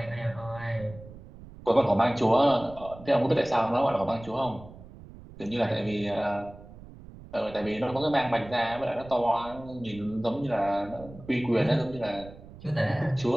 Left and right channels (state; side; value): noise; right; rumble, 18 dB below the sound